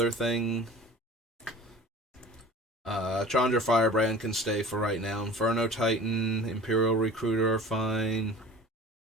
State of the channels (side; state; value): both; normal; correlation 0.42